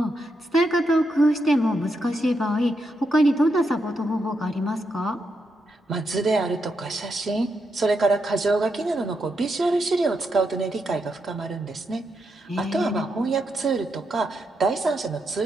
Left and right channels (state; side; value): normal; both; correlation 0.83